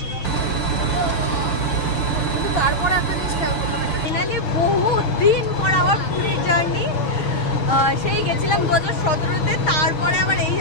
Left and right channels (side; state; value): right; late; 6.7 ms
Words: ফাইনালি বহুত দিন পর আবার পুরীর জার্নি। সেই গেছিলাম 2017-তে, তারপরে আবার এই